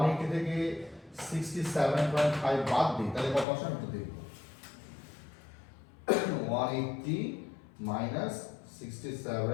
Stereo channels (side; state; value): right; drops out; at 3.5 s